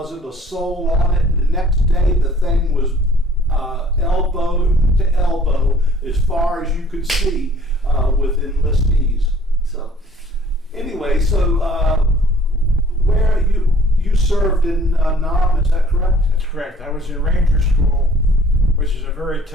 a soul on it, and the next day the thing was elbow to elbow as far as you could see with enlistees. So anyway, where you served in Nam, is that correct? That's correct. I was in Ranger School, which is a very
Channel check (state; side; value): normal; both; correlation 0.55